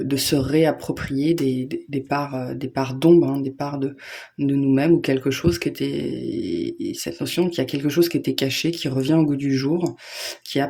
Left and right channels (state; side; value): identical; both; correlation 1.00